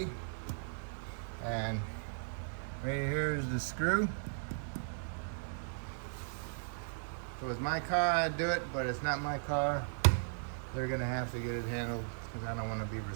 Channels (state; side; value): silent; left; 53 dB below the other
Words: And right here is the screw. If it was my car, I'd do it, but it's not my car. They're gonna have to get it handled because I don't want to be